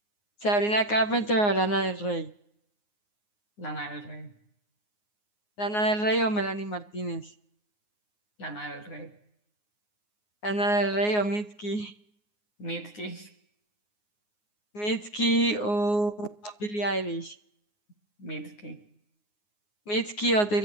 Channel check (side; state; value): right; late; 9.6 ms